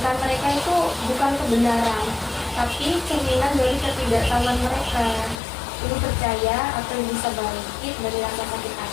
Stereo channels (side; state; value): right; drops out; at 5.4 s